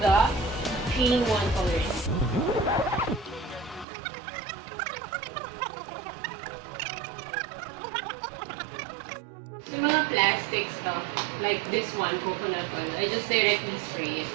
the in-one coloring. Yung mga plastic stuff, like this one, coconut oil, I just directly spray it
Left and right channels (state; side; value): drops out; left; at 3.9 s